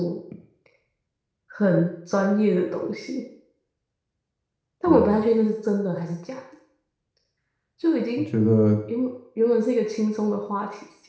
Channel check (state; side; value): identical; both; correlation 1.00